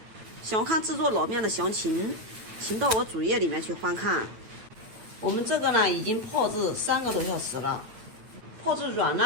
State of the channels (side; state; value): left; late; 9.1 ms